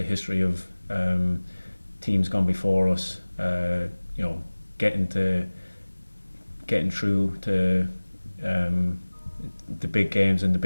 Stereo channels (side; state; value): both; inverted; correlation -1.00